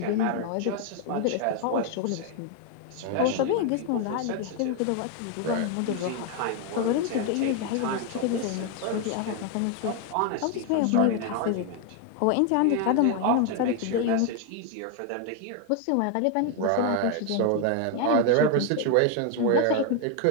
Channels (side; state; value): both; different; correlation 0.01